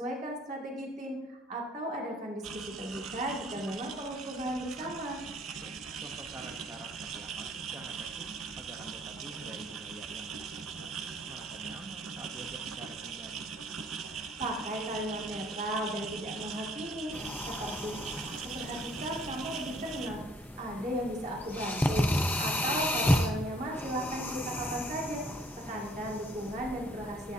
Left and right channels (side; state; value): both; normal; correlation 0.61